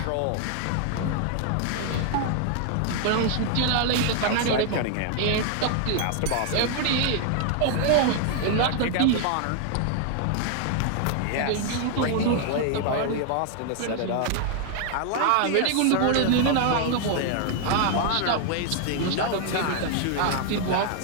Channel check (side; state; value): both; different; correlation 0.00